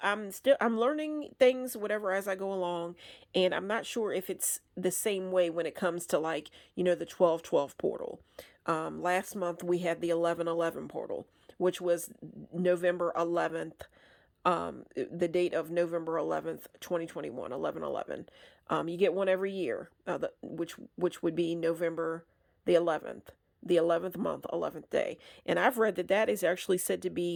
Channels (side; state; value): both; identical; correlation 1.00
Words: I'm learning things, whatever, as I go along, and I'm not sure if it's the same way when it comes to like, the 12/12 portal. Last month we had the 11/11 portal, which was November 11th, the date of November 11th, 2021, 11/11. You get one every year, which would be November the 11th month, 11th day. And I've read that is actually said to